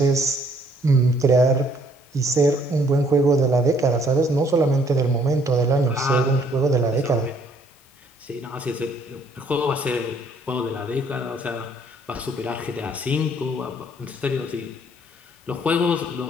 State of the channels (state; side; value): normal; both; correlation 0.64